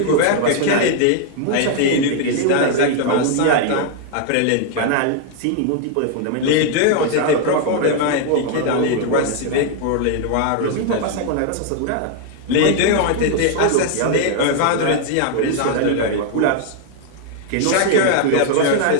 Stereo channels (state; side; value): different; both; correlation 0.00